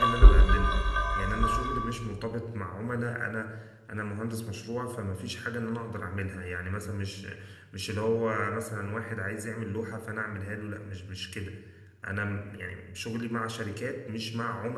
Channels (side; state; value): both; identical; correlation 1.00